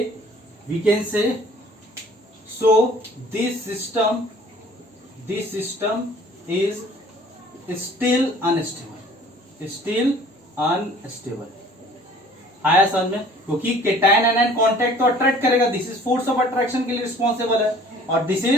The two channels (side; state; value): both; normal; correlation 0.52